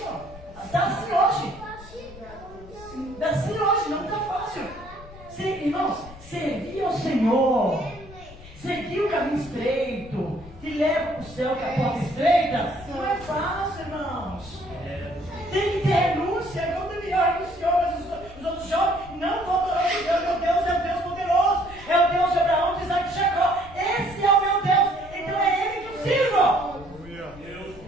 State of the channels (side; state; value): left; noise; rumble, 18 dB below the sound